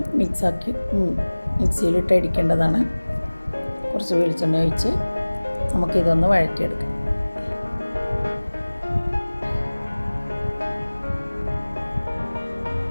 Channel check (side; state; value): both; inverted; correlation -1.00